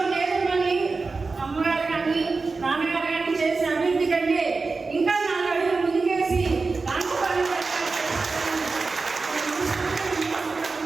నేదురుమల్లి అమ్మగారు కానీ నాన్నగారు కానీ చేసిన అభివృద్ధి కంటే ఇంకా 4 అడుగులు ముందుకేసి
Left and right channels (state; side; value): quieter; left; 4.1 dB